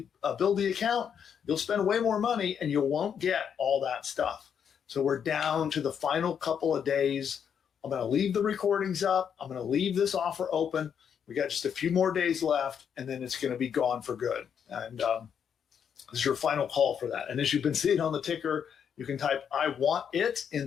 Buildy account, you'll spend way more money and you won't get all that stuff. So we're down to the final couple of days. I'm going to leave the recordings up. I'm going to leave this offer open. We got just a few more days left, and then it's going to be gone for good. And this is your final call for that. And as you've been seeing on the ticker, you can type "I want it"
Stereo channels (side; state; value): right; quieter; 7.8 dB